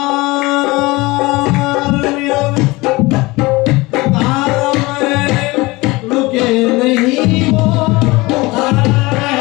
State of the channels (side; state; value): right; quieter; 22.3 dB